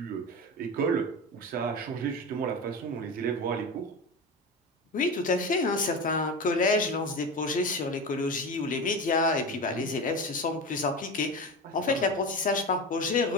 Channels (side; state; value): both; normal; correlation 0.25